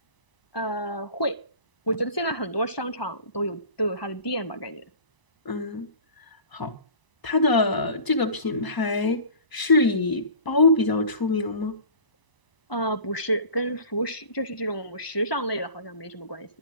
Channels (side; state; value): right; late; 1.0 ms